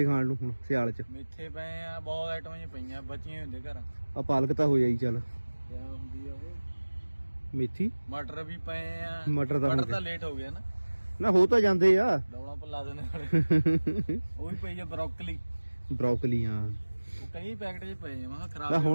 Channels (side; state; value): both; inverted; correlation -1.00